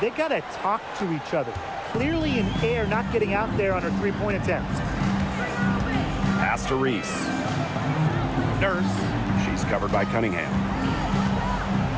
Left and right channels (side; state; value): both; identical; correlation 1.00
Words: they got to talk to each other. Clearly in air, not getting out there on her three-point attempt. Pass to Reese. Nurse. She's covered by Cunningham.